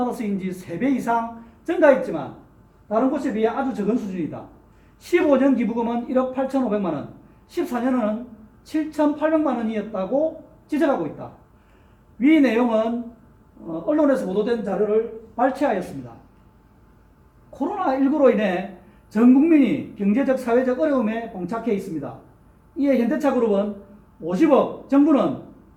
3배 이상 증가했지만 다른 곳에 비해 아주 적은 수준이다. 15년 기부금은 1억 8,500만 원, 14년은 7,800만 원이었다고 지적하고 있다. 위 내용은 언론에서 보도된 자료를 발췌하였습니다. 코로나19로 인해 전 국민이 경제적, 사회적 어려움에 봉착해 있습니다. 이에 현대차그룹은 50억, 정부는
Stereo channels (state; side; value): identical; both; correlation 1.00